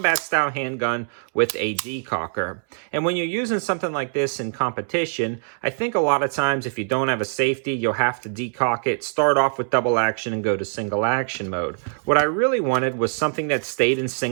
style handgun with a decocker. And when you're using something like this in competition, I think a lot of times if you don't have a safety, you'll have to decock it, start off with double action and go to single action mode. What I really wanted was something that stayed in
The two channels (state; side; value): silent; left; digital silence